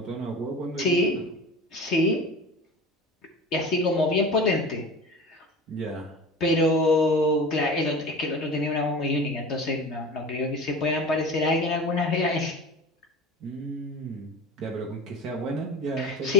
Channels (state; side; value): normal; both; correlation 0.35